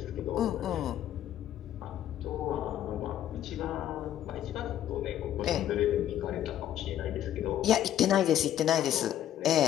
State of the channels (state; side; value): quieter; right; 11.5 dB